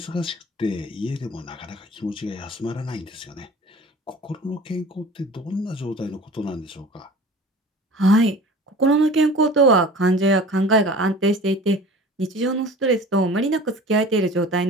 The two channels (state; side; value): normal; both; correlation 0.41